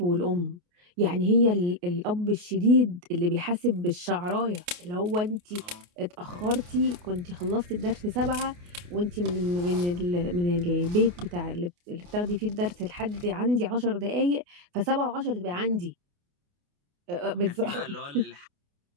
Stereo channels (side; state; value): left; late; 28 ms